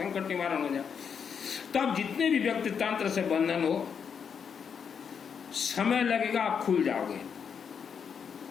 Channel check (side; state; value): right; quieter; 6.9 dB